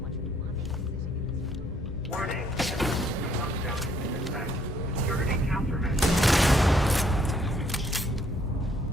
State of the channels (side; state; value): both; normal; correlation 0.66